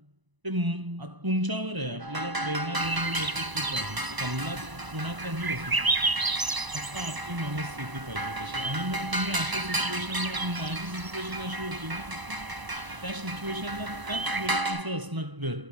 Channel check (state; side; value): late; left; 1.0 ms